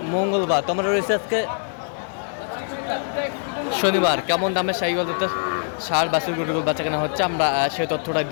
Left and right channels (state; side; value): silent; right; 57 dB below the other